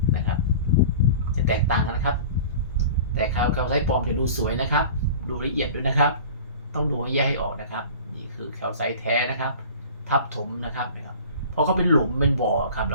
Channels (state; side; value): inverted; both; correlation -0.40